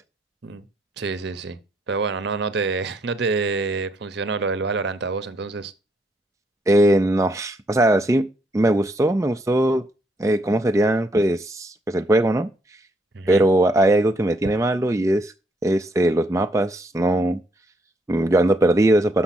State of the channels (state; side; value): normal; both; correlation 0.73